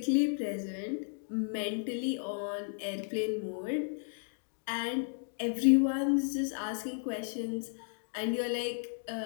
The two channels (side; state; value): right; silent; digital silence